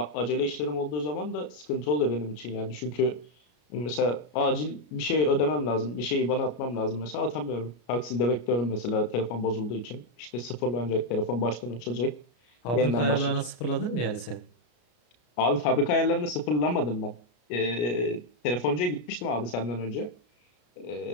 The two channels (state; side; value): late; right; 33 ms